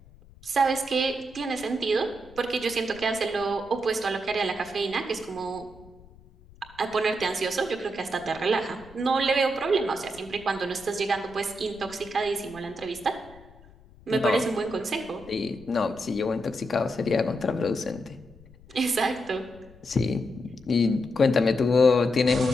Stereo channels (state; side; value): noise; left; rumble, 23 dB below the sound